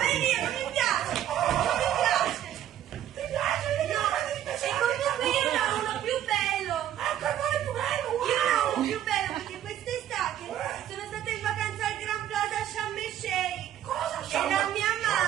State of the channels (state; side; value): quieter; left; 11.4 dB